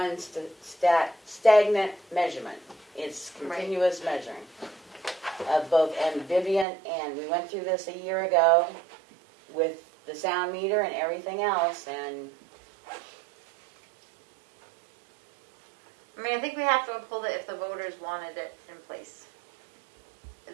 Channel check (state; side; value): drops out; left; at 6.7 s